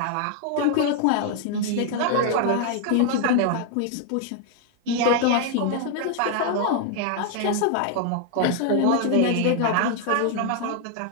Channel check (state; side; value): different; both; correlation 0.00